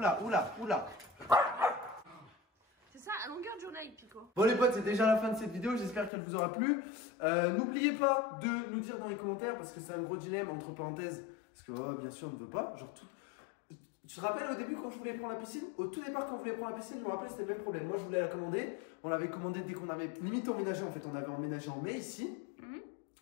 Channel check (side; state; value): right; drops out; at 6.1 s